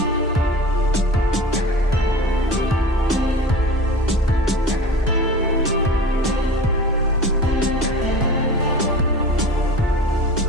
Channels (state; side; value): normal; both; correlation 0.36